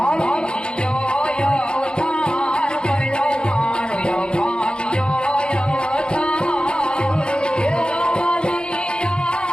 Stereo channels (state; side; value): late; right; 0.051 ms